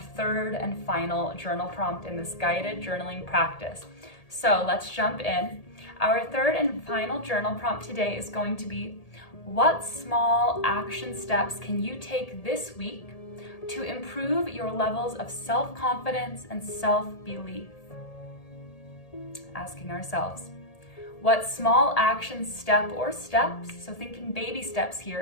3rd and final journal prompt in this guided journaling practice. So let's jump in. Our 3rd and final journal prompt today is going to be, what small action steps can you take this week to improve your levels of self-confidence and self-belief? Asking ourselves, what small action step or steps, so thinking baby steps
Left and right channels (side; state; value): right; late; 1.8 ms